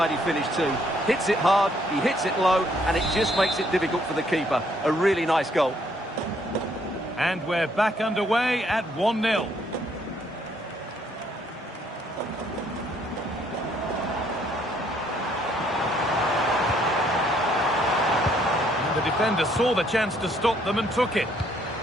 finish too. Hits it hard, he hits it low, and it just makes it difficult for the keeper. A really nice goal. And we're back underway at 1-0. And the defender saw the chance to stop them and took it.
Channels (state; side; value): normal; both; correlation 0.67